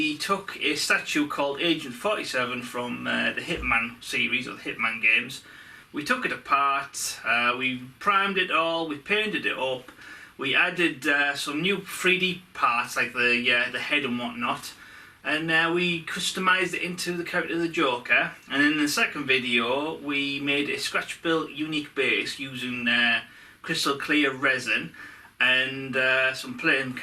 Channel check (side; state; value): both; identical; correlation 1.00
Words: took a statue called Agent 47 from the Hitman series, or the Hitman games. We took it apart, we primed it all, we painted it up, we added some new 3D parts like the head and whatnot, and we customised it into the character of the Joker. And in the second video, we made a scratch-built unique base using crystal clear resin and some playing